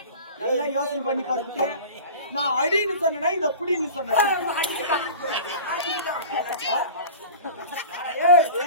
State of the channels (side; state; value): both; inverted; correlation -0.38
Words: நல்லா யோசனை பண்ணி பாருங்க. நான் அடின்னு சொன்னா இத புடின்னு சொன்னேன்.